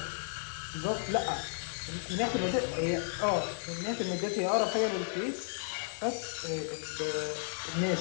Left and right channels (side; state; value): right; silent; digital silence